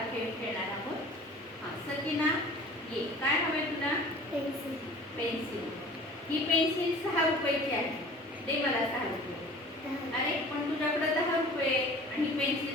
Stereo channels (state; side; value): normal; both; correlation 0.45